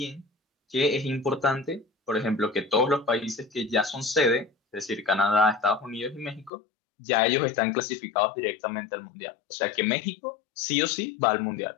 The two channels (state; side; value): drops out; right; at 6.5 s